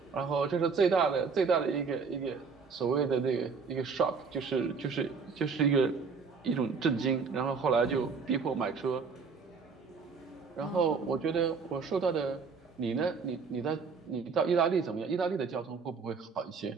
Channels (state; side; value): quieter; left; 5.2 dB